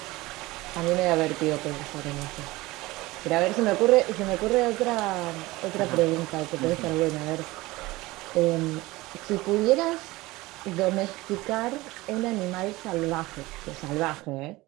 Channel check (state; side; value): quieter; left; 20.0 dB